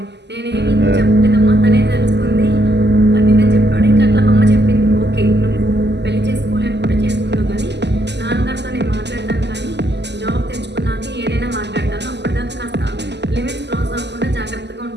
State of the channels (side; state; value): left; late; 0.50 ms